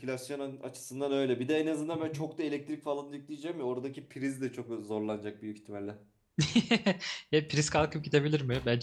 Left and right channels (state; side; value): identical; both; correlation 1.00